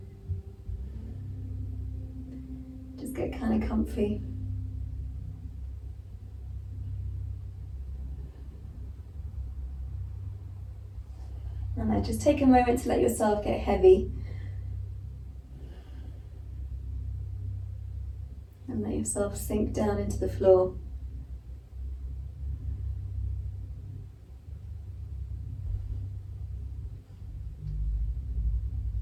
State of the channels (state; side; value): identical; both; correlation 1.00